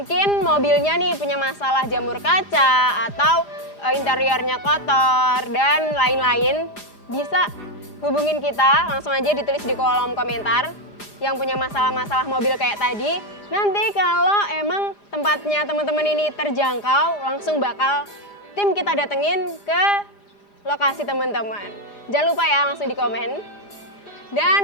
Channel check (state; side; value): late; right; 4.9 ms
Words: mobilnya nih punya masalah jamur kaca atau interiornya kotor dan lain-lain, bisa hubungin kita, langsung aja ditulis di kolom komentar yang punya masalah-masalah mobil kayak tadi. Nanti kalau emang tempatnya teman-teman ini terjangkau, langsung bakal tim kita datengin ke lokasi teman-teman. Jangan lupa ya, langsung di komen.